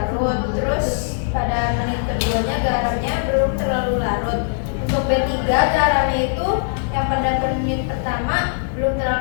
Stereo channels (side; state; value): right; silent; 66 dB below the other